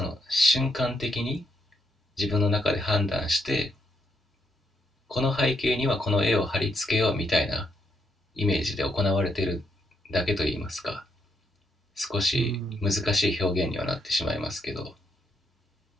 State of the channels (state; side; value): normal; both; correlation 0.77